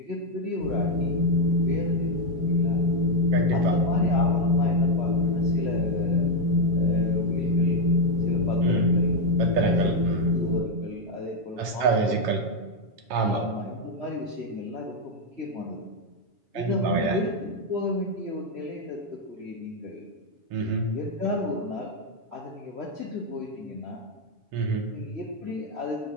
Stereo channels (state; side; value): late; left; 7.2 ms